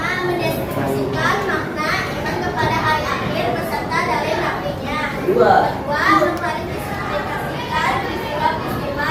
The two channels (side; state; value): both; identical; correlation 1.00